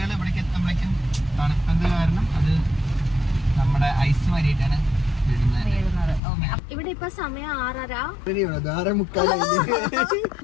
ഇവിടേക്ക് എത്തുമ്പോഴേക്കും തണുപ്പത് കാരണം അത് നമ്മുടെ ഐസ് മാറിയിട്ടാണ് ഇവിടെ ഇപ്പൊ സമയം 6:30.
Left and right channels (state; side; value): drops out; right; at 6.2 s